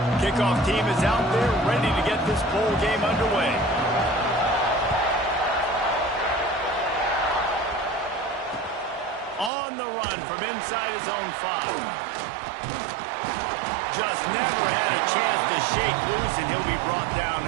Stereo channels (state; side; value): drops out; left; at 9.5 s